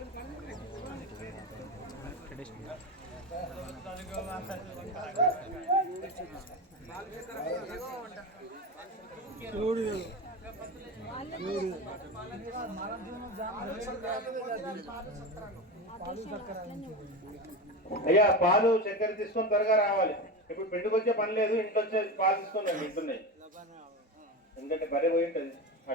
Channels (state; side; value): normal; both; correlation 0.22